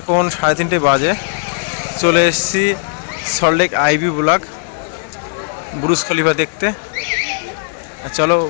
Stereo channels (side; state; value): right; silent; digital silence